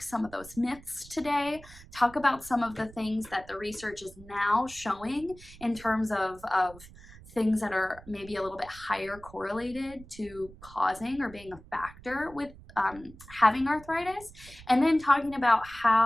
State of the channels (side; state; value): right; noise; rumble, 20 dB below the sound